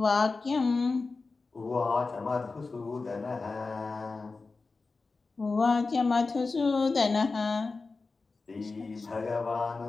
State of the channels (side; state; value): right; quieter; 4.0 dB